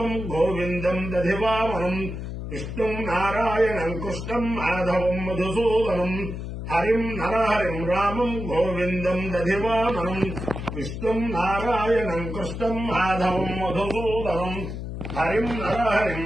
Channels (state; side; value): noise; left; hum, 7 dB below the sound